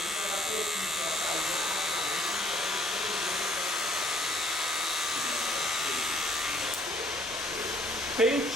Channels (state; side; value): normal; both; correlation 0.62